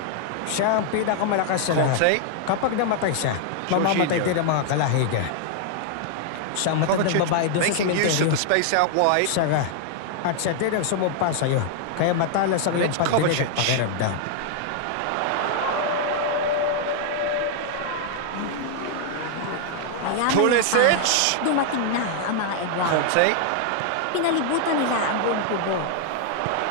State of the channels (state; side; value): different; both; correlation 0.00